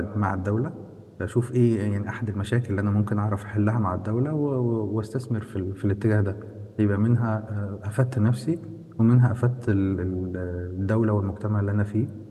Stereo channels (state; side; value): identical; both; correlation 1.00